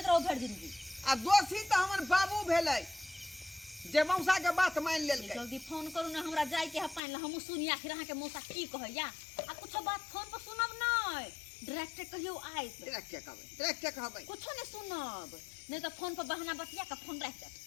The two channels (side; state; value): right; drops out; at 7.0 s